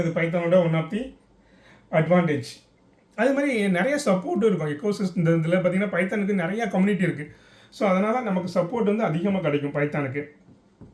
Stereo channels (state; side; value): identical; both; correlation 1.00